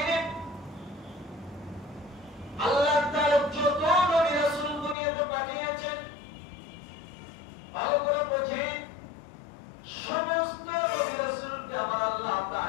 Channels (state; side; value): drops out; right; at 5.0 s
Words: আল্লাহ তাআলা যত নবী রাসূল দুনিয়াতে পাঠিয়েছেন, ভালো করে বোঝেন, সমস্ত নবী রাসূলকে আমার আল্লাহ